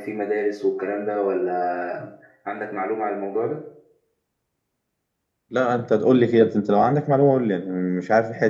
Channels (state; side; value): identical; both; correlation 1.00